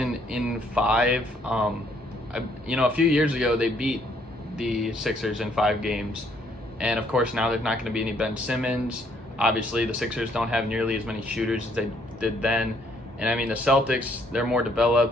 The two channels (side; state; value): both; normal; correlation 0.67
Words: in 5. A few years ago they beat the Sixers in 5 games, and of course now there's not going to be any Ben Simmons. Obviously, the Sixers don't have nearly as many shooters as they did then. And I mean, the Celtics, they're more